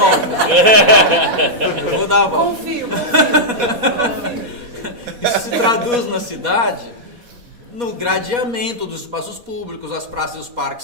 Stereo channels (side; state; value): left; late; 4.2 ms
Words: Eu vou dar a volta. Confio. Isso se traduz na cidade no gradeamento dos espaços públicos. As praças e os